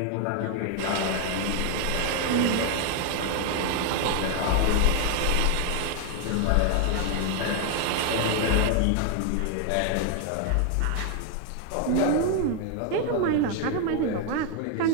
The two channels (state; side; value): different; both; correlation 0.00